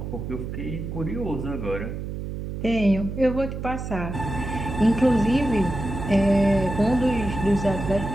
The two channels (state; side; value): noise; right; hum, 6 dB below the sound